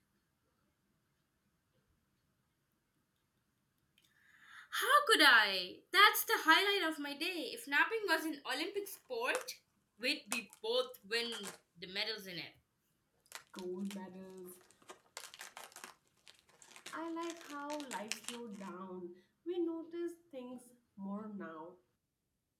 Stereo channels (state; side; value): identical; both; correlation 1.00